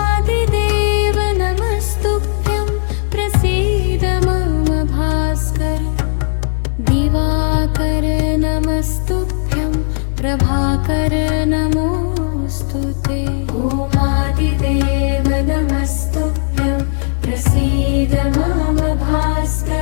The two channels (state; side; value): silent; right; digital silence